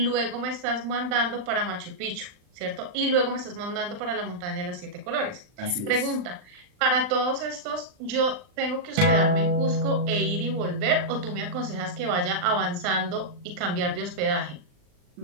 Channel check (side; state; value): left; late; 39 ms